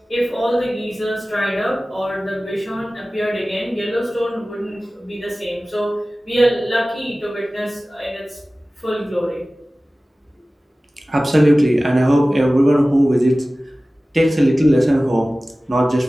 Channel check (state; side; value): normal; both; correlation 0.97